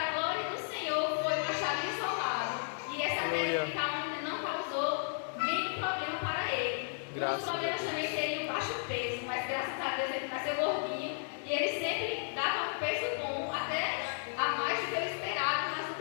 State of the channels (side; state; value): right; silent; digital silence